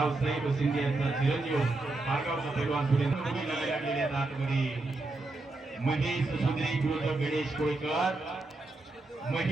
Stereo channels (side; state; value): left; quieter; 3.1 dB